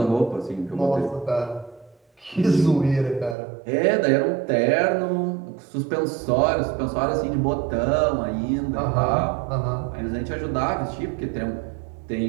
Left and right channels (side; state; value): left; drops out; at 3.4 s